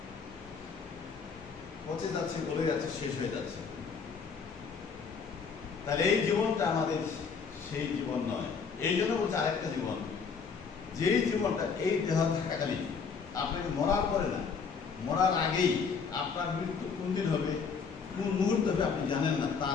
পচে যাচ্ছে, গলে যাচ্ছে, শেষ হয়ে যাচ্ছে। তাহলে এই জীবনটা আমাদের সেই জীবন নয়। এই জন্য বলছে আরেকটা জীবন, যেই জীবনটা এই দেহ থাকাকালীন, আপনাকে মরার পরে না, মরার আগেই, আপনার মৃত্যু কোন দিন হবে, কোন মুহূর্ত হবে আপনি জানেন না,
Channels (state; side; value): quieter; right; 5.7 dB